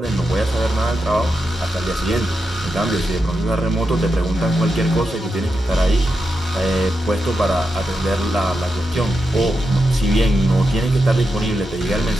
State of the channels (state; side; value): normal; both; correlation 0.87